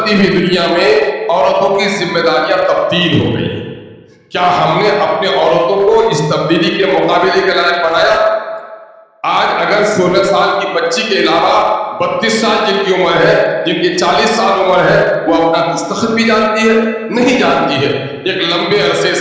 हुई दुनिया में औरतों की जिम्मेदारियां तब्दील हो गई। क्या हमने अपने औरतों को इस तब्दीली के मुकाबले के लायक बनाया? आज अगर 16 साल की बच्ची के अलावा 32 साल जिनकी उम्र है, जिनकी 40 साल उम्र है, वो अपना दस्तखत भी जानती है? नहीं जानती है। एक लंबे अरसे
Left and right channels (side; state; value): both; identical; correlation 1.00